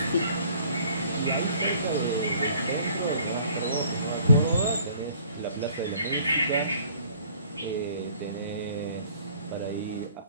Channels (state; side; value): inverted; both; correlation -0.56